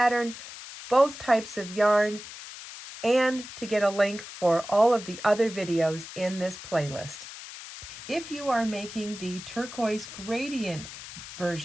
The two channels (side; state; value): left; noise; hiss, 13 dB below the sound